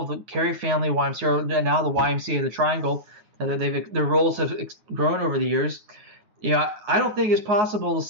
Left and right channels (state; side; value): late; left; 9.5 ms